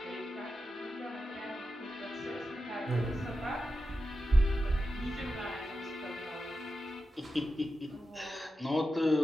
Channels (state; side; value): normal; both; correlation 0.90